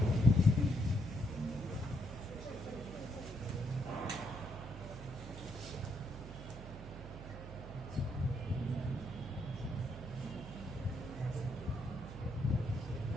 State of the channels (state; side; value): noise; right; hum, 12 dB below the sound